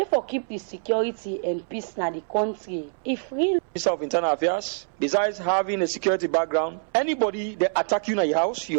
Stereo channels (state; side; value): silent; left; 61 dB below the other